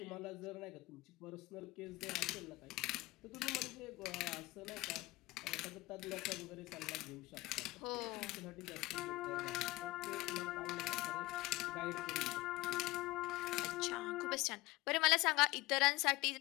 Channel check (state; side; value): quieter; right; 20.0 dB